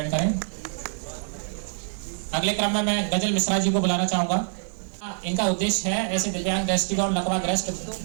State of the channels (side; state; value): left; silent; 61 dB below the other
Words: करें। अगले क्रम में मैं गजल मिश्रा जी को बुलाना चाहूंगा। इनका उद्देश्य है ऐसे दिव्यांग, दृष्टिगत, लकवाग्रस्त,